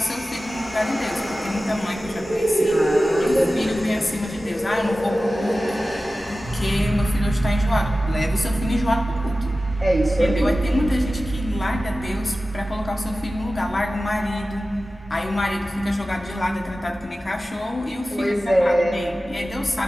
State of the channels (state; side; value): normal; both; correlation 0.95